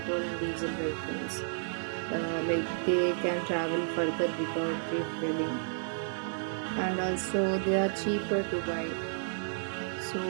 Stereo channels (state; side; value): silent; left; digital silence